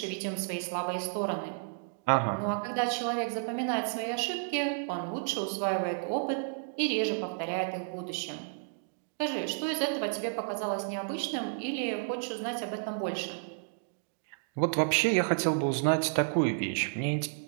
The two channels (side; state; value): left; silent; digital silence